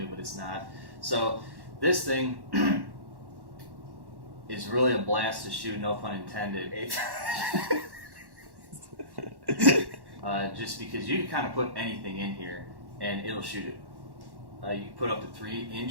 but it's not. So this thing is really a blast to shoot, no pun intended. Just because you can kind of put anything in here and it'll shoot it. You can put up to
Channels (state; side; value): late; left; 1.1 ms